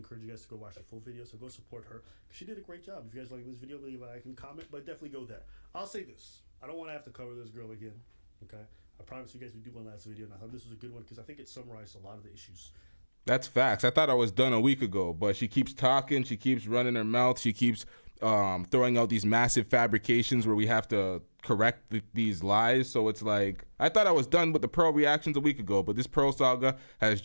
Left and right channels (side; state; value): both; inverted; correlation -1.00